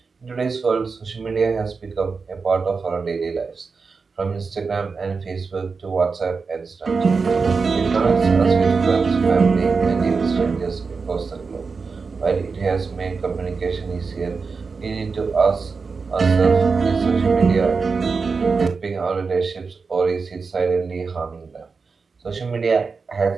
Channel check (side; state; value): left; quieter; 4.8 dB